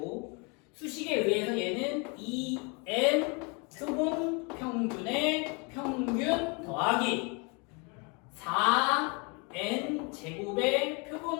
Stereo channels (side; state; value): right; quieter; 32.3 dB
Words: 수식에 의해서 얘는 2n 표본 평균의 평균 더하기 4n 제곱의